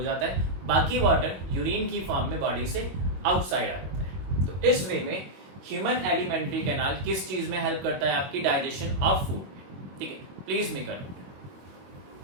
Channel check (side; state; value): left; late; 21 ms